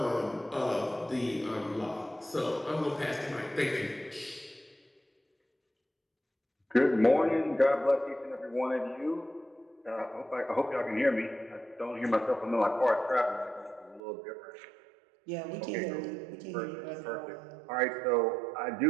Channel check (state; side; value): drops out; left; at 14.0 s